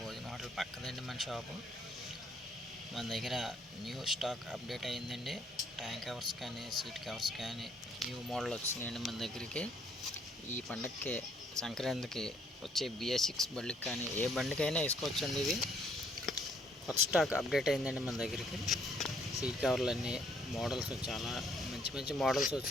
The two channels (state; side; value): normal; both; correlation 0.66